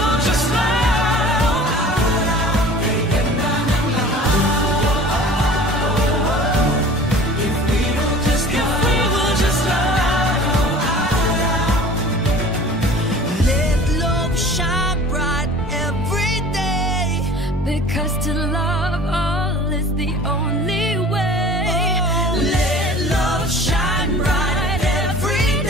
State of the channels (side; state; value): both; normal; correlation 0.44